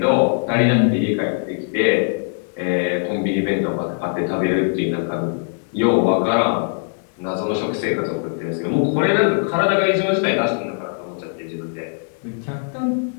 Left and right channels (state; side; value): silent; right; 65 dB below the other